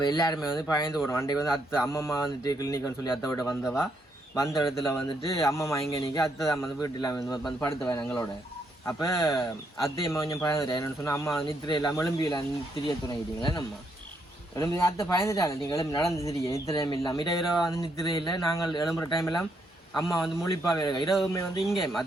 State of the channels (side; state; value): both; normal; correlation 0.76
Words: எல்லாருமே வந்து பயந்து போடுவோம். அன்றைக்கு வந்து அம்மம்மா வந்துட்டு கிளினிக்னு சொல்லி அத்தை விட வந்த இடத்துல வந்துட்டு அம்மம்மா இங்கே நிற்க அத்தை தான் வந்து வீட்டில் வந்து படுத்துவேன் எங்களோட. அப்போ அத்தையம்மா கொஞ்சம் பயந்துட்டேன். என்னென்னு சொன்னால் அம்மா நித்திரை இல்லாமல் எலும்பியில் திரிய துணைக்கிட்டீங்களே நம்ம எலும்பி அத்தை பயந்துட்டாங்க. நீங்கள் எலும்பி நடந்து திரிய நித்திரையும் இல்லாமல் இரவு வந்து நித்திரை இல்லை. நாங்கள் எழும்புற டைம் எல்லாம் அம்மா வந்து முழிப்பாகவே இருக்கா. இரவுமே வந்து இங்கே